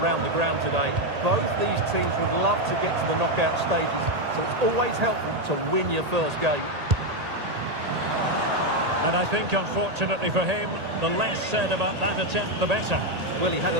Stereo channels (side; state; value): left; late; 1.8 ms